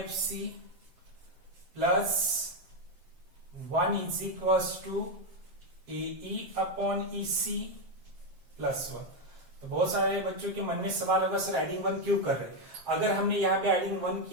plus 1 is equal to AE upon EC plus 1। तो बहुत सारे बच्चों के मन में सवाल होगा, सर एडिंग 1 क्यों कर रहे हैं? अगर हमने यहाँ पे एडिंग 1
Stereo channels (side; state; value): left; late; 7.5 ms